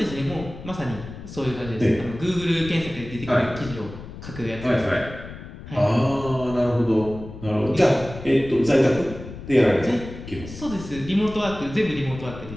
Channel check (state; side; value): noise; left; rumble, 13 dB below the sound